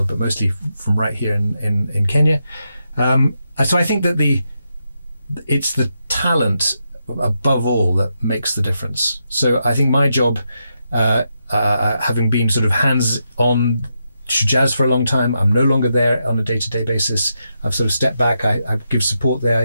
but mostly from right here in Kenya. So I think that it's the talent above all that makes the difference. So I think my job, having been sort of hands-on Shujaaz for a long time, I'm no longer there on a day-to-day basis. I've sort of stepped back. I give support there.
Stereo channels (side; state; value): both; inverted; correlation -0.84